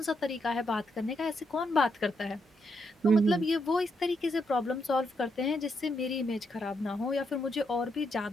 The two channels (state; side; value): normal; both; correlation 0.79